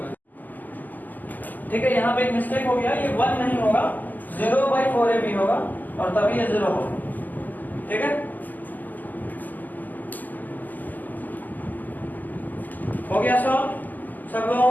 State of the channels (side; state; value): right; late; 0.084 ms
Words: ठीक है, यहाँ पे एक मिस्टेक हो गया, ये 1 नहीं होगा, 0/4ab होगा, और तभी ये 0 होगा, ठीक है, हो गया सब